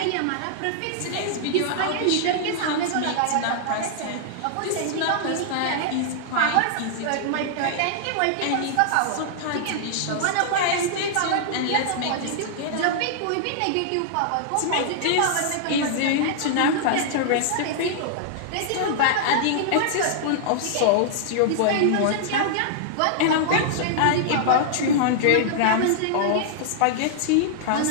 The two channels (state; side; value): different; both; correlation -0.01